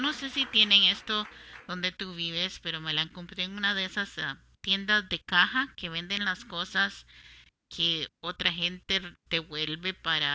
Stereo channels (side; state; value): both; identical; correlation 1.00